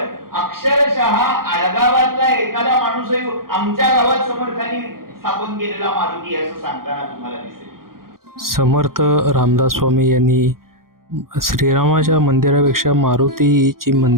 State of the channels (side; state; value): left; late; 0.92 ms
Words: अक्षरशः आडगावातला एखादा माणूसही आमच्या गावात समर्थांनी स्थापन केलेला मारुती असं सांगताना तुम्हाला दिसेल. समर्थ रामदास स्वामी यांनी श्रीरामाच्या मंदिरापेक्षा मारुतीची